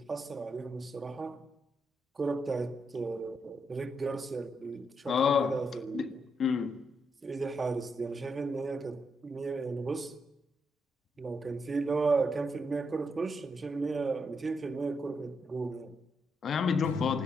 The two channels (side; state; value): both; normal; correlation 0.80